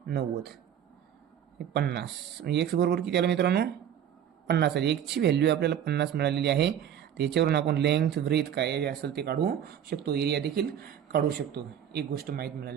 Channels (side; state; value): left; quieter; 9.5 dB